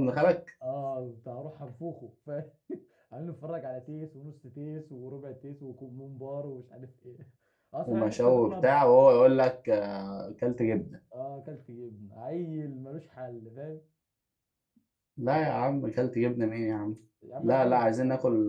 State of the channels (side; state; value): both; identical; correlation 1.00